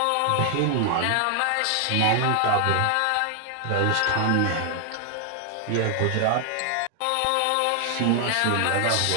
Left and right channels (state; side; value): different; both; correlation 0.00